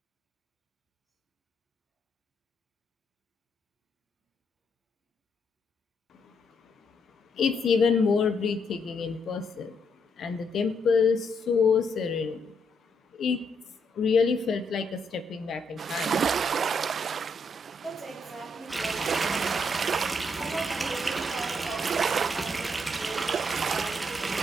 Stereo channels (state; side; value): normal; both; correlation 0.76